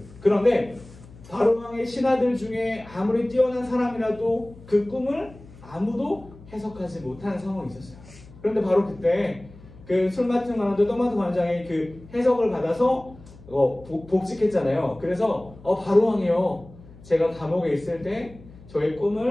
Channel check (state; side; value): noise; left; hum, 21 dB below the sound